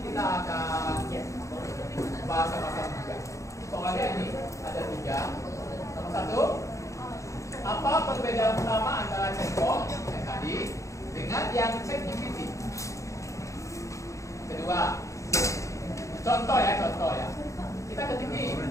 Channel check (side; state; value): right; late; 0.15 ms